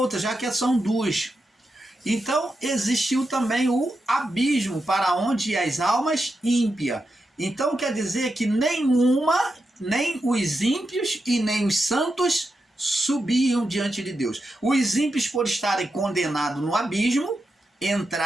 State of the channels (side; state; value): both; normal; correlation 0.87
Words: já que são duas. Então, existiu também o abismo, para onde ia as almas ímpias. Então, quer dizer que nem os ímpios e nem os santos subiam diante de Deus. Os ímpios, por estarem condenados no abismo,